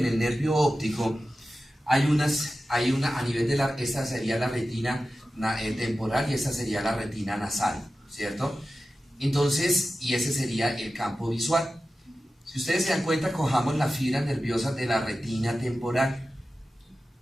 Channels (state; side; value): normal; both; correlation 0.94